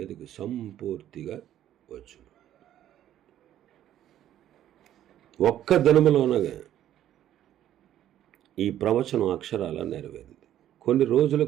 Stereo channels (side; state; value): left; quieter; 11.8 dB